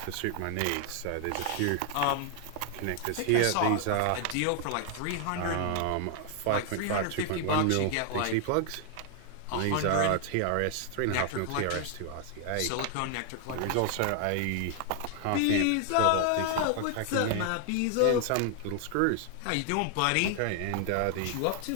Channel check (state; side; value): different; both; correlation 0.00